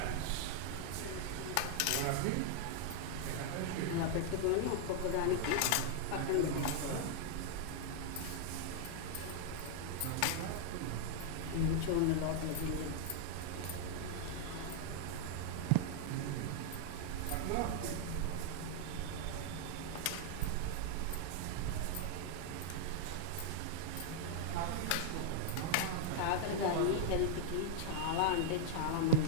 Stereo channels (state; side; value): different; both; correlation 0.00